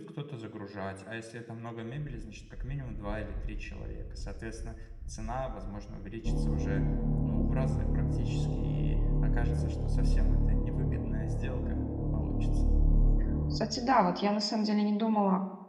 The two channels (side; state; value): both; identical; correlation 1.00